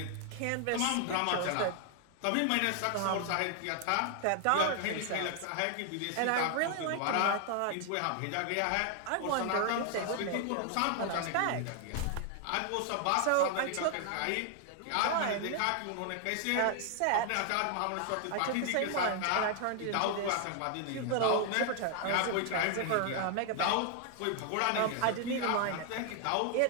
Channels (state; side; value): different; both; correlation 0.00